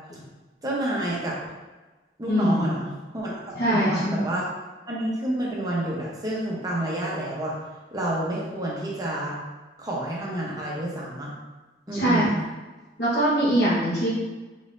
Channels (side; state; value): both; normal; correlation 0.53